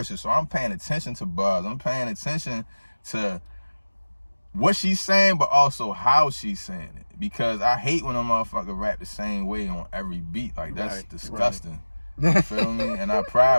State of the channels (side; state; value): both; inverted; correlation -1.00